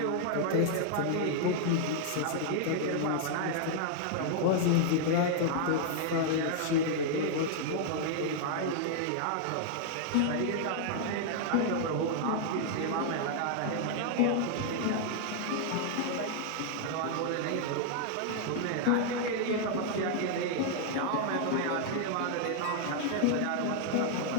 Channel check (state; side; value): different; both; correlation 0.00